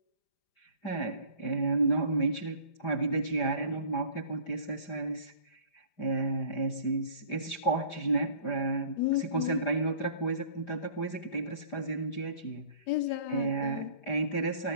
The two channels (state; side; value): late; right; 5.0 ms